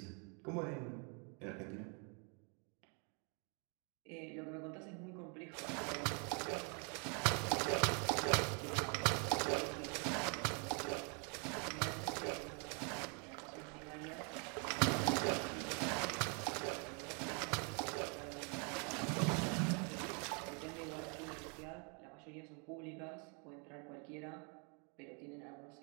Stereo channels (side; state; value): left; quieter; 36.0 dB